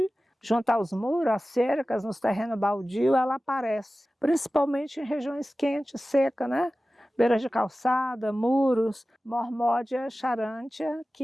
junto aos muros, às cercas, nos terrenos baldios, ela aparece, principalmente em regiões quentes, secas, né? Beiras de calçada, muros, Mormódia charantia,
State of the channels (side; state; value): both; normal; correlation 0.96